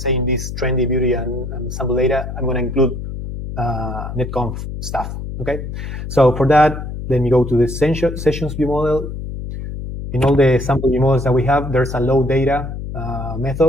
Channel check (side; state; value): left; noise; hum, 7 dB below the sound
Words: this trendy beauty and sample data, I'm going to include NetConf stuff, okay? So for that, let me go to the sessions view model. In all the sample view models that we have, there's a load data